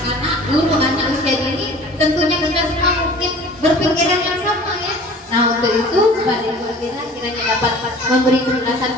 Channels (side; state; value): both; normal; correlation 0.45